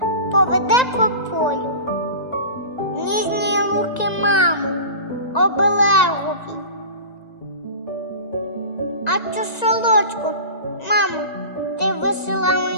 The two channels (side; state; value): right; late; 1.9 ms